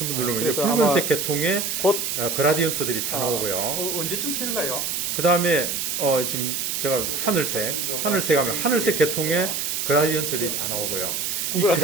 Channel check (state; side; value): noise; right; hiss, 1 dB below the sound